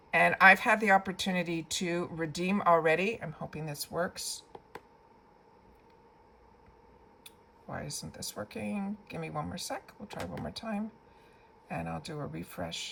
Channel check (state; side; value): identical; both; correlation 1.00